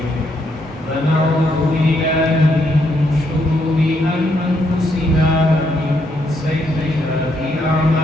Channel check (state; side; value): normal; both; correlation 0.75